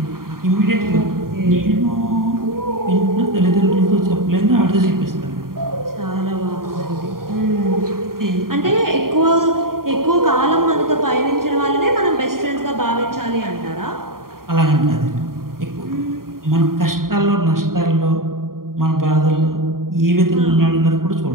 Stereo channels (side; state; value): left; late; 0.92 ms